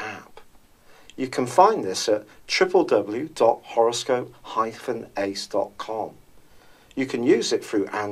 You can find this at www.horoscope-ace.com. You can use it through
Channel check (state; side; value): identical; both; correlation 1.00